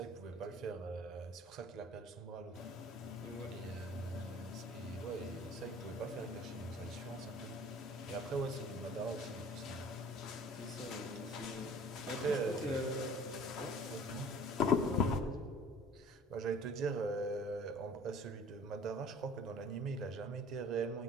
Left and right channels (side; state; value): both; normal; correlation 0.48